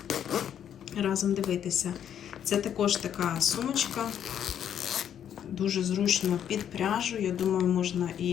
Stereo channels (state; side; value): quieter; right; 9.4 dB